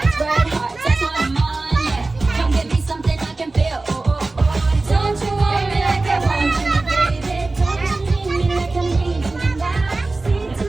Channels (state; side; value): quieter; left; 3.3 dB